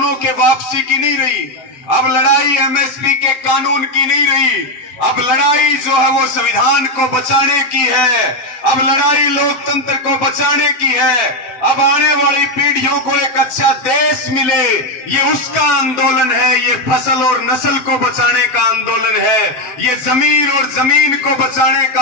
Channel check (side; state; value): right; late; 7.6 ms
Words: के वापसी की नहीं रही, अब लड़ाई एमएसपी के कानून की नहीं रही, अब लड़ाई जो है वो संविधान को बचाने की है, अब लड़ाई लोकतंत्र को बचाने की है, अब आने वाली पीढ़ियों को एक अच्छा देश मिले, ये उसका आंदोलन है। ये फसल और नस्ल को बचाने का आंदोलन है, ये जमीन और जमीन को बचाने का